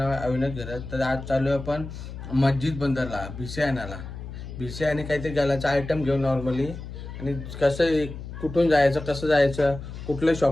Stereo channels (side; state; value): left; noise; hum, 10 dB below the sound